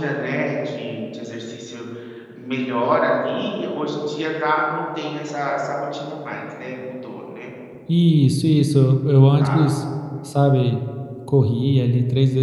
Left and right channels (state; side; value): identical; both; correlation 1.00